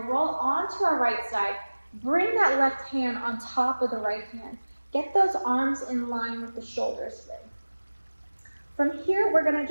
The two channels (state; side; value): inverted; both; correlation -1.00